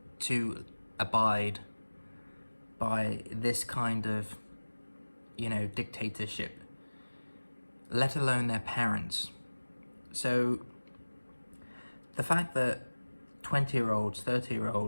to abide by this kind of, dictatorship, let alone their parents? So the fact that 20-year-olds,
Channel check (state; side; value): inverted; both; correlation -1.00